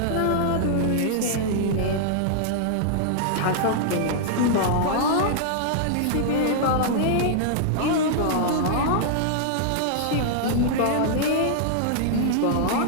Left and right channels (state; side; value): different; both; correlation -0.01